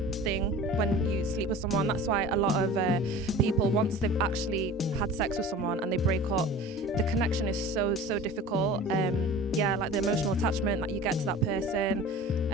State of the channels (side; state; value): both; normal; correlation 0.39